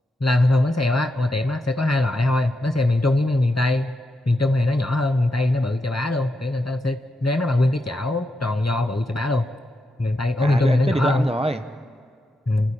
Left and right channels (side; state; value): both; normal; correlation 0.85